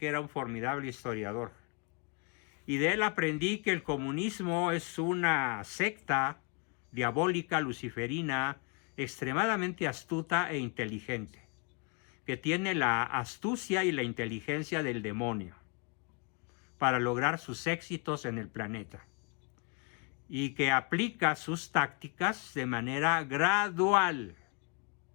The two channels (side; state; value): right; quieter; 33.4 dB